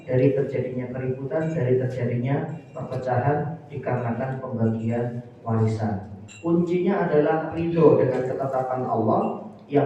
dari terjadinya keributan, dari terjadinya perpecahan dikarenakan pembagian warisan. Kuncinya adalah ridho dengan ketetapan Allah yang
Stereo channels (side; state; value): both; identical; correlation 1.00